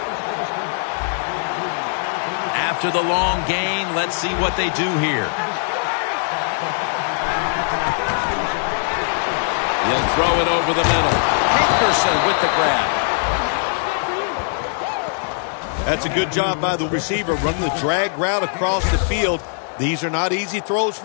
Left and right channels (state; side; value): silent; right; digital silence